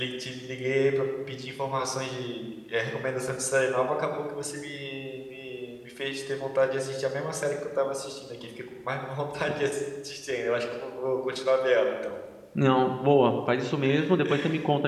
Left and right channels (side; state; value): both; identical; correlation 1.00